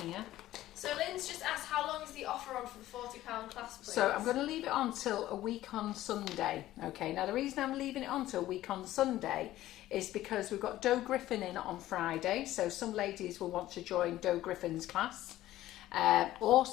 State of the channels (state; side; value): quieter; right; 14.7 dB